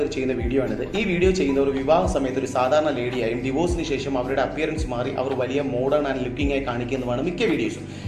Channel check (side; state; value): both; identical; correlation 1.00